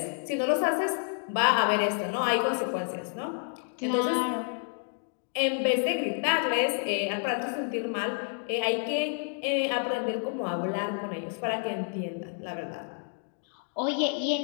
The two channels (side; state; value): right; silent; 57 dB below the other